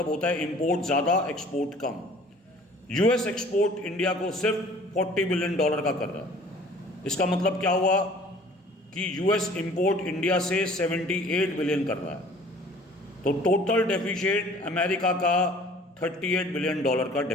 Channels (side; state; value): both; normal; correlation 0.51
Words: होता है इंपोर्ट ज़्यादा, एक्सपोर्ट कम। US एक्सपोर्ट इंडिया को सिर्फ $40 बिलियन का कर रहा है। इसका मतलब क्या हुआ कि US इंपोर्ट इंडिया से 78 बिलियन कर रहा है। तो टोटल डेफिसिट अमेरिका का $38 बिलियन का